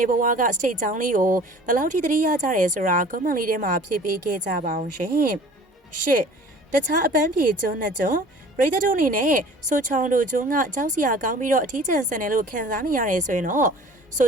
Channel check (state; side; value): normal; both; correlation 0.46